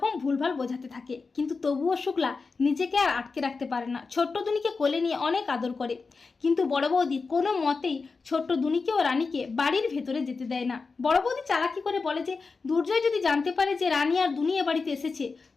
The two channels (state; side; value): quieter; right; 4.4 dB